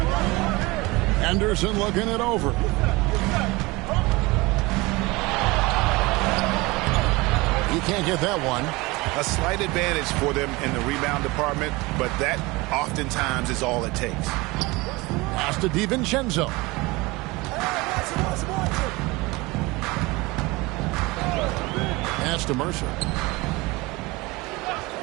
Anderson looking it over. He can't get that one. A slight advantage for them in the rebound department, but that oftentimes is all it takes. Pass to DiVincenzo. Pass to Mercer.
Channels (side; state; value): left; quieter; 23.0 dB